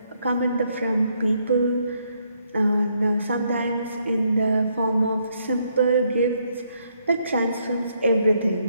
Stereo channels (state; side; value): inverted; both; correlation -0.73